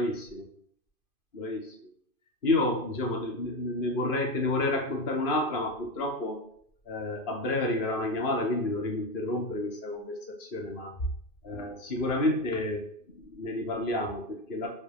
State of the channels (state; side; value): late; right; 2.5 ms